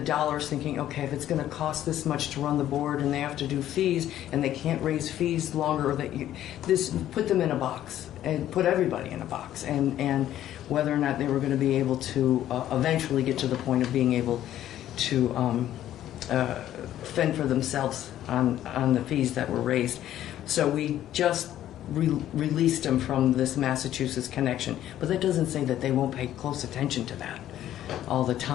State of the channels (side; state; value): right; quieter; 12.3 dB